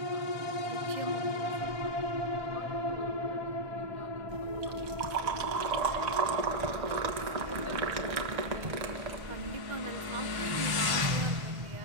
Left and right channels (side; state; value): left; late; 1.5 ms